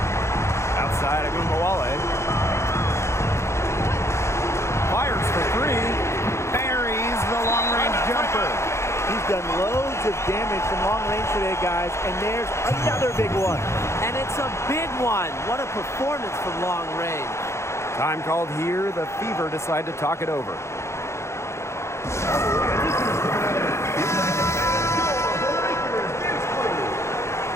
Outside Agumbawale. Fires for 3. Buries the long-range jumper. He's done loads of damage from long range today, guys, and there's another big one. And it's a big one. What a performance from long range. Time called here. The Fever decide to talk it over.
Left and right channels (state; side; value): late; right; 0.13 ms